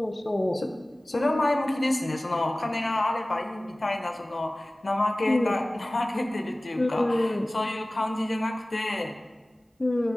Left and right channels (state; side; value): normal; both; correlation 0.98